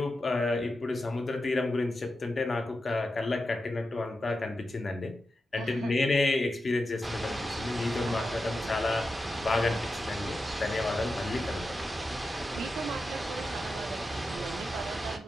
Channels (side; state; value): both; normal; correlation 0.90